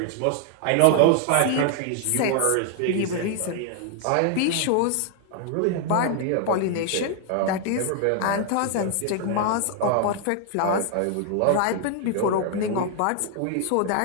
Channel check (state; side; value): different; both; correlation 0.00